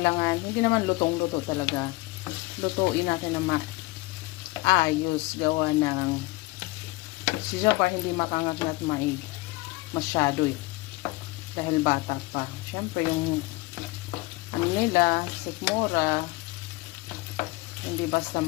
hindi naman lutong-luto talaga. Lutuin natin na maayos gawa ng si Jabbar hindi makangat-ngat masyado eh. Dahil bata pa. Siyempre yung ano nila, sikmura, hindi basta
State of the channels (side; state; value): right; quieter; 21.7 dB